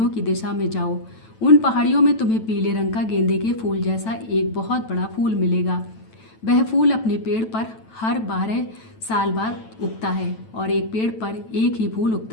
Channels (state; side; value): late; right; 9.1 ms